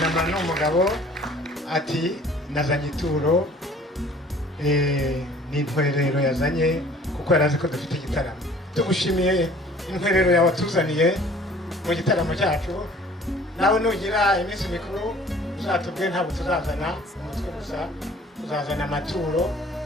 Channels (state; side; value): normal; both; correlation 0.52